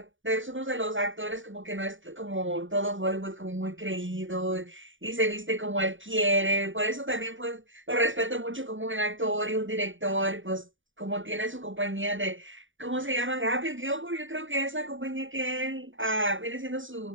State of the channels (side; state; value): left; late; 0.57 ms